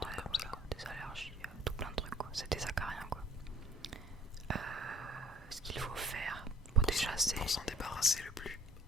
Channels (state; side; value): normal; both; correlation 0.57